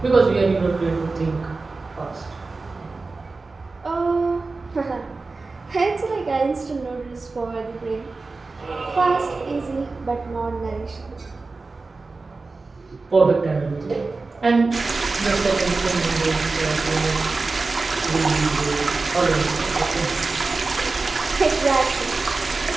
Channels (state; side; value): quieter; left; 3.8 dB